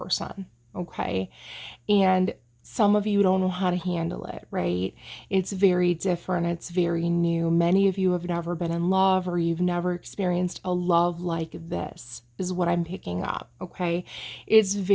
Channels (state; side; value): identical; both; correlation 1.00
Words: okay? And some of you don't know how to handle it, right? It's very different. It's very new. Many of you have never been in love, or you've never experienced a love like this, is what I'm picking up, okay? It's